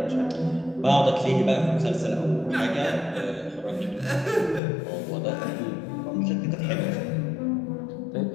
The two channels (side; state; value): right; drops out; at 4.6 s